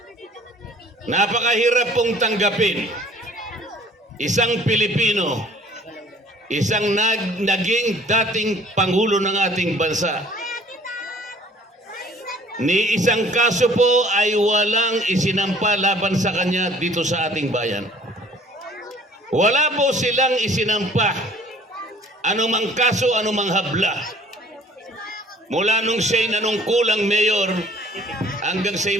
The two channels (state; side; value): normal; both; correlation 0.54